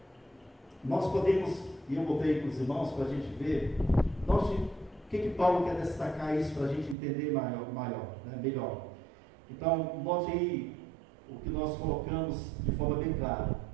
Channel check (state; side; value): drops out; left; at 7.0 s